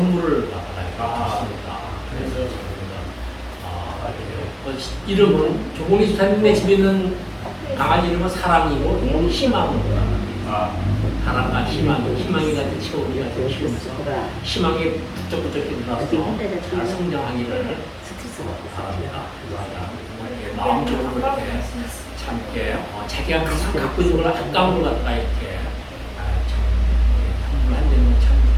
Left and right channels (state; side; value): identical; both; correlation 1.00